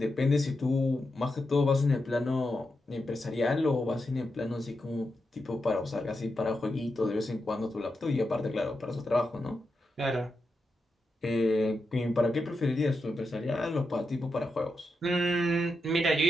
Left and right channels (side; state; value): both; normal; correlation 0.87